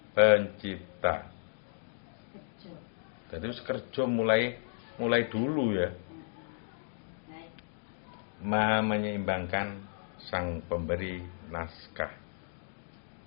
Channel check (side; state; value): right; silent; digital silence